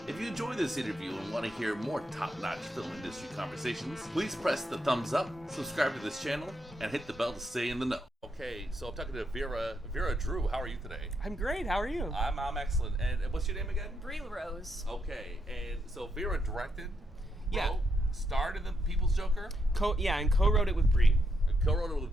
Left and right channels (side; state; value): both; normal; correlation 0.80